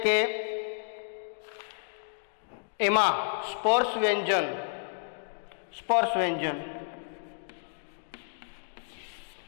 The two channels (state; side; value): silent; right; digital silence